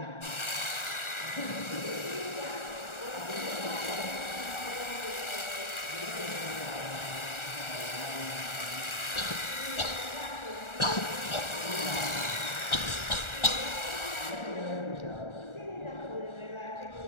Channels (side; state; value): right; late; 1.4 ms